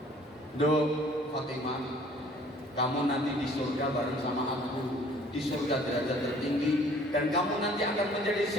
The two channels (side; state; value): both; normal; correlation 0.55